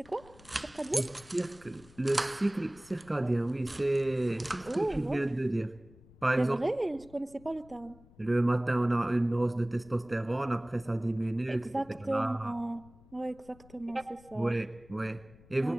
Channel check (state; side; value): noise; left; rumble, 24 dB below the sound